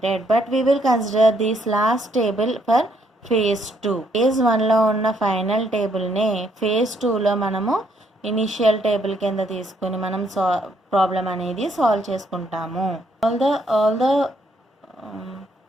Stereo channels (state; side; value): normal; both; correlation 0.71